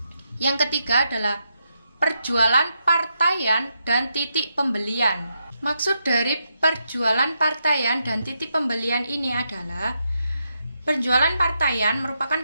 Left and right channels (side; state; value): both; inverted; correlation -0.82